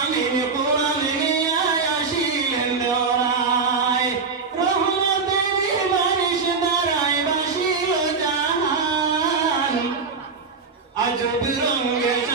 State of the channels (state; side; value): quieter; left; 4.8 dB